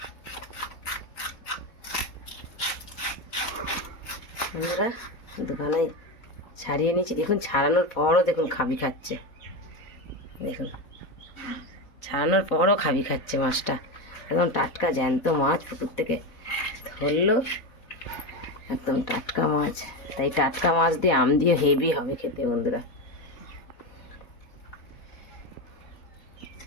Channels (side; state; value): right; late; 4.1 ms